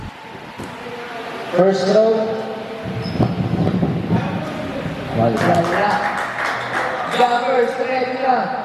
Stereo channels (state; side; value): identical; both; correlation 1.00